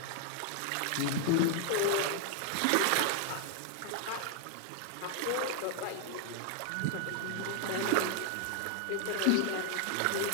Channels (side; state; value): both; different; correlation 0.00